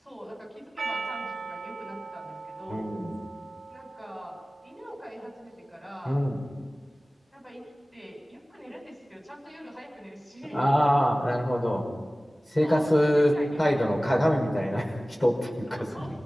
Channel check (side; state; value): both; normal; correlation 0.98